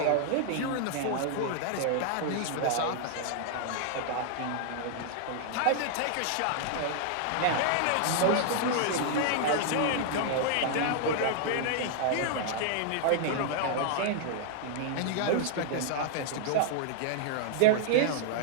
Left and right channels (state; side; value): different; both; correlation -0.01